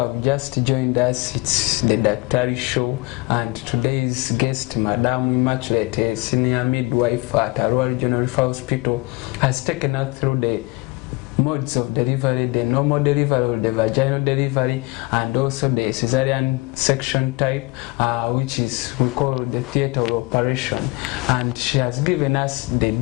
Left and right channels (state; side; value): quieter; right; 24.7 dB